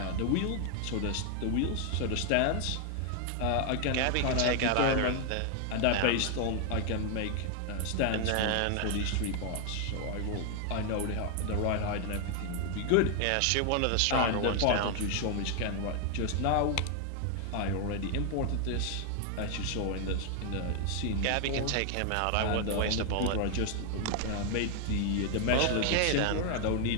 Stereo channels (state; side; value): different; both; correlation 0.00